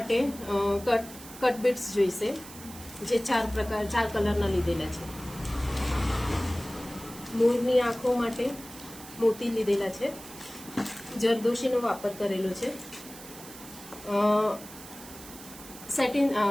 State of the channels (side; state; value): right; noise; hiss, 16 dB below the sound